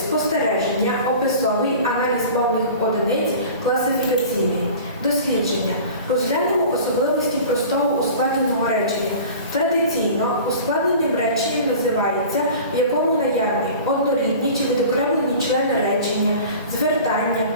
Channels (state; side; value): inverted; both; correlation -0.40